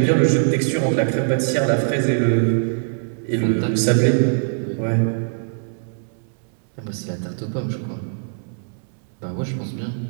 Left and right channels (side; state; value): left; silent; digital silence